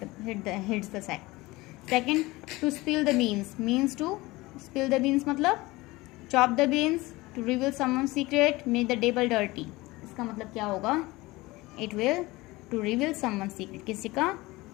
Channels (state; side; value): quieter; right; 20.8 dB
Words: hits the sack. Second, to spill the beans, means to spill the beans मतलब chop the beans, to reveal someone secret, make the table dirty. इसका मतलब क्या होगा? It will to reveal someone secret, किसी का